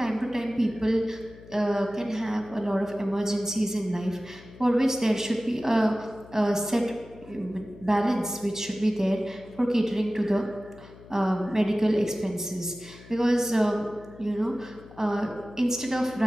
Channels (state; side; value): noise; left; hum, 20 dB below the sound